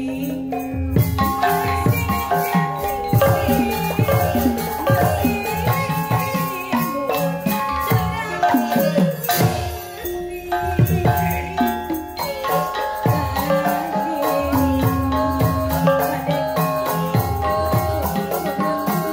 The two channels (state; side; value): identical; both; correlation 1.00